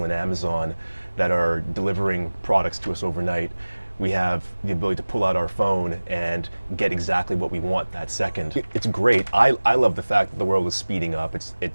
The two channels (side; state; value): both; inverted; correlation -1.00